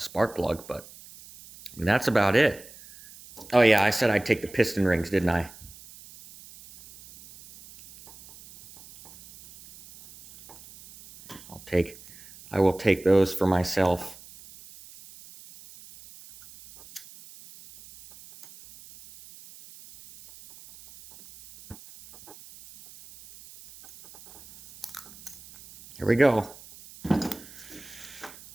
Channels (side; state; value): right; noise; hiss, 20 dB below the sound